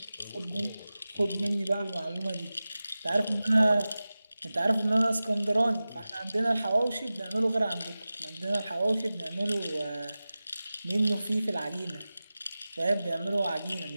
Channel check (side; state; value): both; inverted; correlation -0.96